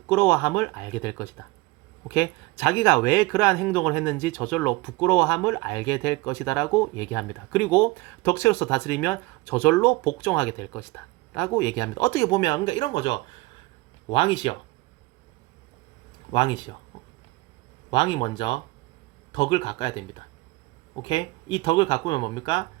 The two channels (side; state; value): left; quieter; 21.4 dB